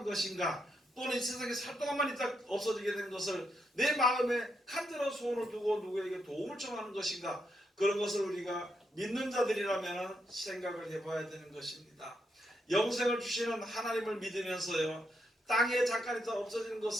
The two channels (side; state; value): both; normal; correlation 0.80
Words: 것인가, 또는 이 세상에 살 동안만 있다 없어지게 되는 것을 내 마음에 간절한 소원을 두고 누구에게 도움을 청하는 것인가, 그런 것을 우리가 믿는 자들이라면 생각을 해봐야 되는 것입니다. 영생을 주시는 하나님을 믿으면서요, 땅에 잠깐 있다 없어지는